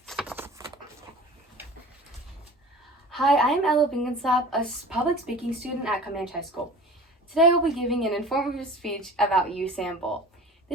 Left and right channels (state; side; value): normal; both; correlation 0.40